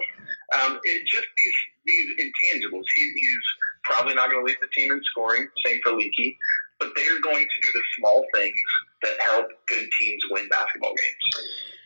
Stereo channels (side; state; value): both; inverted; correlation -1.00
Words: it just these intangibles. He's probably not going to lead the team in scoring. Same for Leaky. But they are going to do the small things that help good teams win basketball games.